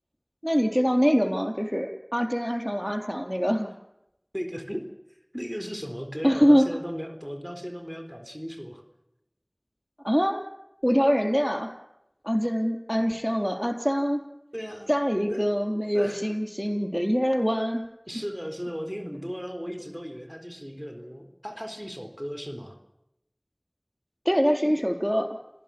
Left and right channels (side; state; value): both; identical; correlation 1.00